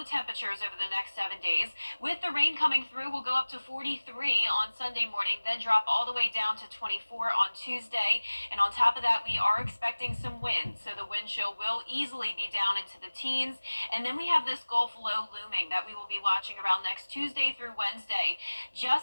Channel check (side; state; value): both; inverted; correlation -1.00